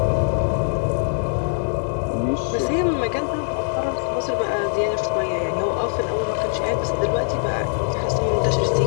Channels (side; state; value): right; silent; digital silence